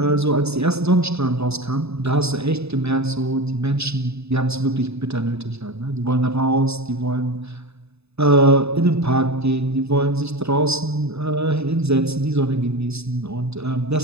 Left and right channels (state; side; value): late; left; 0.79 ms